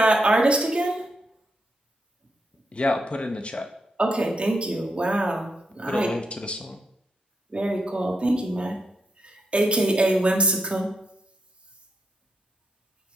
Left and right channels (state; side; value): normal; both; correlation 0.82